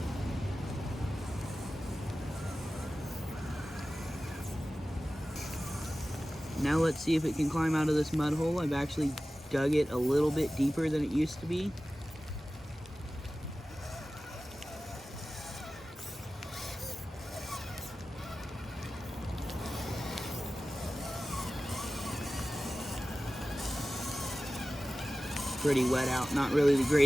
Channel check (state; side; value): normal; both; correlation 0.95